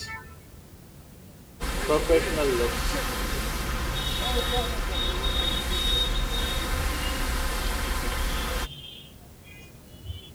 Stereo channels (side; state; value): both; identical; correlation 1.00